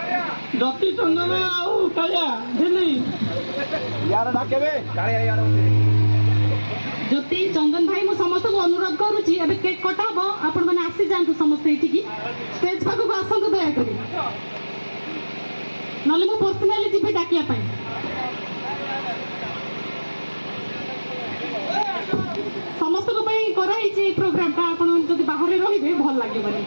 ଆଉ କାଳିଆ ଝିଲି ଜ୍ୟୋତି ଚନ୍ଦନ ଭାଇ ମୁଁ ସମସ୍ତଙ୍କୁ ଅନୁରୋଧ କରୁଛି ଏବେ କେକ୍ କଟା ହବ, ଆପଣ ମାନେ ଆସିଯାଆନ୍ତୁ ସମସ୍ତେ ଏଠିକି ଷ୍ଟେଜ ପାଖକୁ ଆସନ୍ତୁ ଦୟାକରି, ନହେଲେ ମୁଁ ପର୍ସନାଲି ଯିବି ଡାକିବା ପାଇଁ। ସମସ୍ତଙ୍କ ପାଇଁ କରାହେଇଛି ଏଇ ପ୍ରୋଗ୍ରାମଟା, ଆପଣ ଯଦି ବାହାରେ ରହିବେ ଭଲ ଲାଗିବନି।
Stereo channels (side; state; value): both; inverted; correlation -1.00